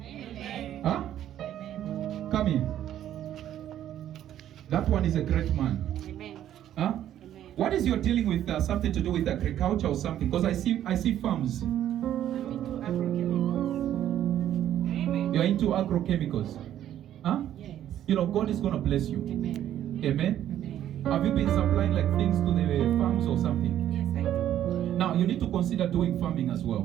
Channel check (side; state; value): left; quieter; 11.4 dB